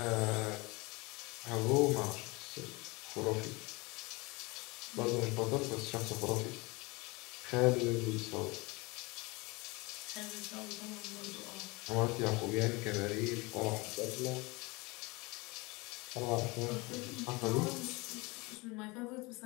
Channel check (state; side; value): quieter; right; 25.3 dB